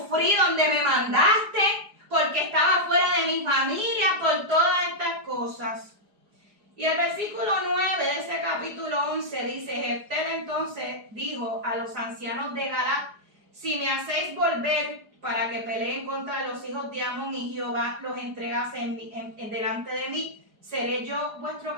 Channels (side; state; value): left; late; 4.9 ms